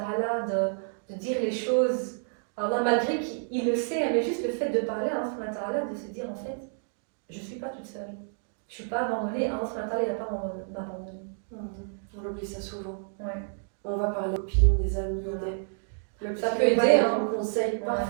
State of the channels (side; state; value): left; silent; digital silence